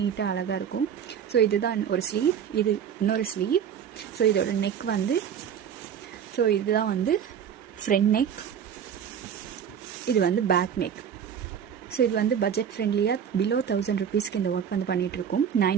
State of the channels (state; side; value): quieter; left; 8.2 dB